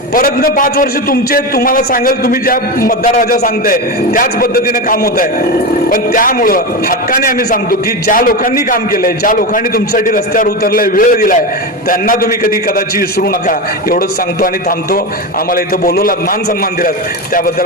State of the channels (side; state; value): both; normal; correlation 0.18